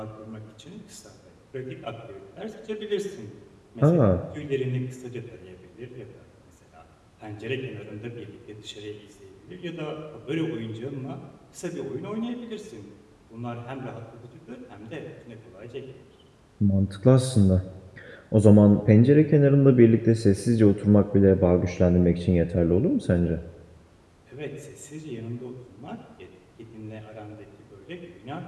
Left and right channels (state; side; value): identical; both; correlation 1.00